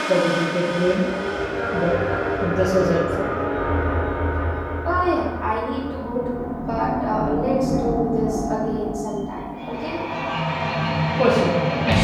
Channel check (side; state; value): both; identical; correlation 1.00